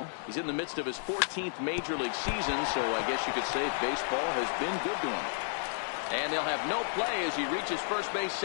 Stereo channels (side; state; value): right; silent; digital silence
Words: He's in the midst of his 14th major league season, so I guess you could say baseball has been good to him. And they'll have no play as he reaches first base